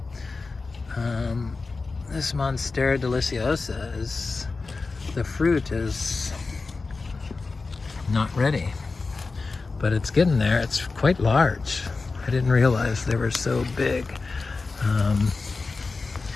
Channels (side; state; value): right; quieter; 4.0 dB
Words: This Monstera Deliciosa is, the fruit is not ready, but it's getting there. It's quite large. I didn't realize they were so big.